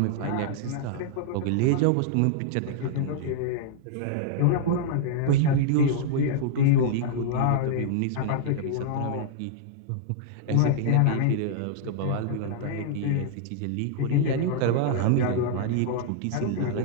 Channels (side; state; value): both; different; correlation -0.01